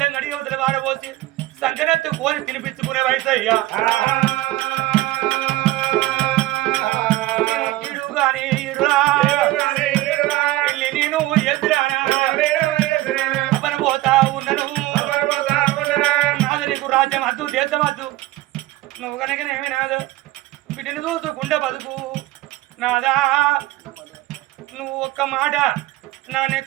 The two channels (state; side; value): quieter; left; 17.3 dB